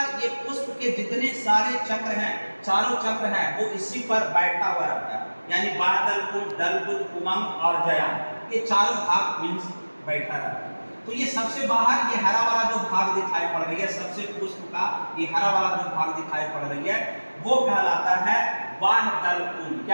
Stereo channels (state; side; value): inverted; both; correlation -1.00